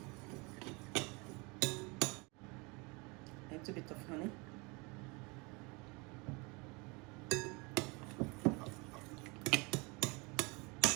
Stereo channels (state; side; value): quieter; left; 28.4 dB